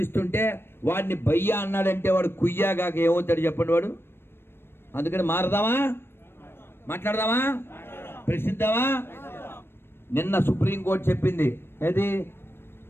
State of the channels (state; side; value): late; right; 0.11 ms